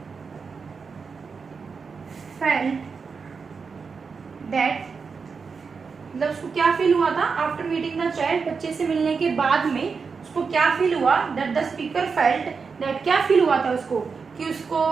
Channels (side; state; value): left; quieter; 5.2 dB